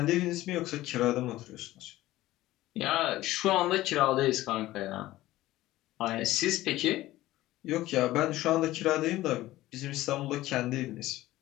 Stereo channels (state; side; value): quieter; right; 16.3 dB